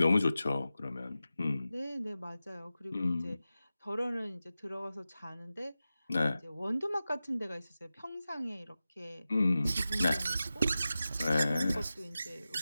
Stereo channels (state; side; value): inverted; both; correlation -0.94